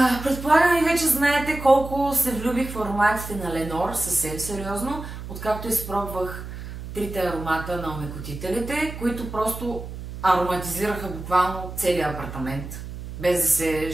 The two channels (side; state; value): right; noise; hum, 10 dB below the sound